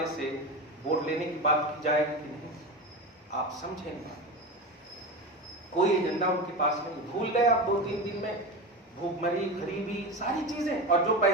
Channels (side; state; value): both; normal; correlation 0.24